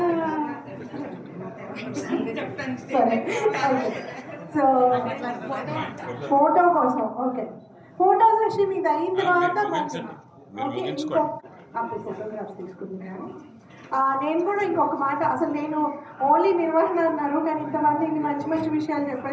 సో ఫోటో కోసం ఓకే, ఫోటో సెషన్ ఇది అయిన తర్వాత ఫోటోగ్రాఫ్స్ తీసుకుంటున్నాను. నేను కూడా ఇంకొక మాట, అసలు నేను ఓన్లీ నిర్వహణ అన్నారు కానీ ఇంతమంది ఇన్ని మంచి మంచి విషయాలు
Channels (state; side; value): identical; both; correlation 1.00